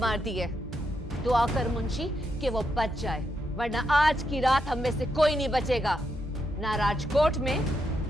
दी है। दुआ कर मुंशी कि वो बच जाए, वरना आज की रात हम में से कोई नहीं बचेगा, ना राजकोट में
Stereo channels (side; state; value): both; normal; correlation 0.82